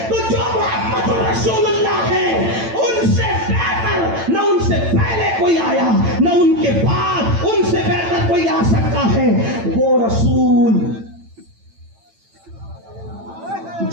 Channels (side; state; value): left; late; 8.9 ms